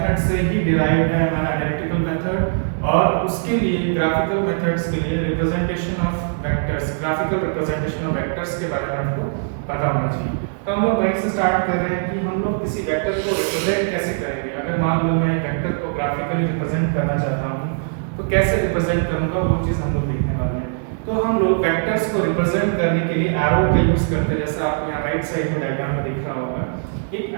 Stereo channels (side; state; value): left; silent; digital silence